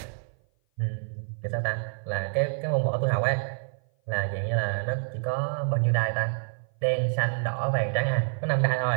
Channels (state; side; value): silent; left; 56 dB below the other